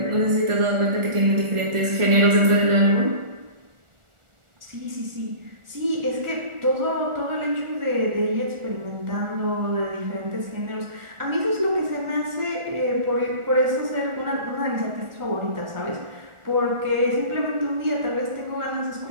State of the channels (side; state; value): left; late; 1.4 ms